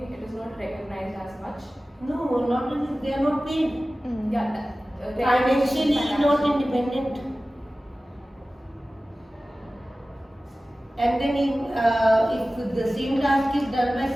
it is not recognized as much. No, not only they are not paid. Yeah, financially not independent. And then if the same task is done by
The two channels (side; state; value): both; normal; correlation 0.96